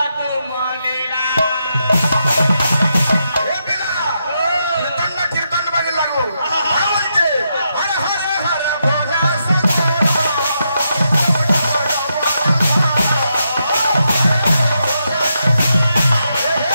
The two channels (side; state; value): both; inverted; correlation -0.82